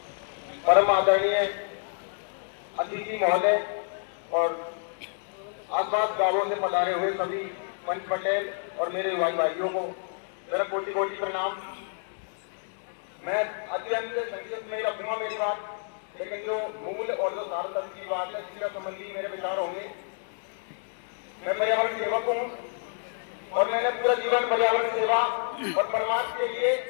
परम आदरणीय अतिथि महोदय और आसपास गांवों से पधारे हुए सभी पंच पटेल और मेरे भाई भाइयों को मेरा कोटि कोटि प्रणाम। मैं अत्यंत संक्षिप्त में रखूंगा मेरी बात, लेकिन जो मूल और जो सार्थक की बात है शिक्षा संबंधी मेरे विचार होंगे। मैं पर्यावरण सेवक हूँ और मैंने पूरा जीवन पर्यावरण सेवा और परमार्थ के लिए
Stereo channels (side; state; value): right; silent; 59 dB below the other